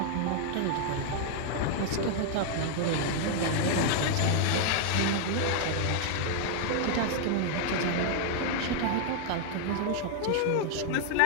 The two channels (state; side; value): different; both; correlation 0.00